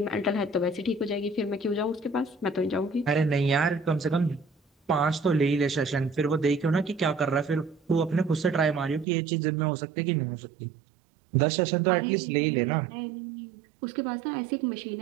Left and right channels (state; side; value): drops out; left; at 9.1 s